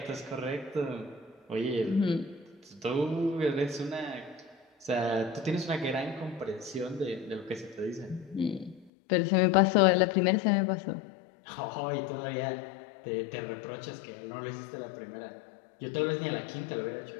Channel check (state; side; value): drops out; right; at 8.9 s